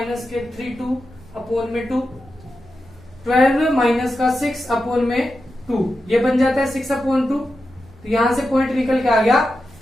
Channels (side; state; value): right; noise; rumble, 24 dB below the sound